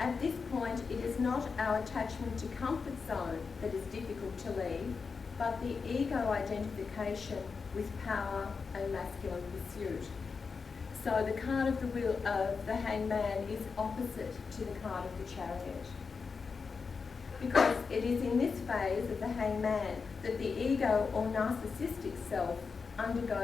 this point, it is not our attachment to comfort zone that is difficult to leave, but the ego identification with power and masculine pursuit. So the card of the wheel of the Hangman is opposite to the card of the Chariot, because it is in this phase of the Hangman that the ego or narcissistic self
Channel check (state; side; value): quieter; right; 5.1 dB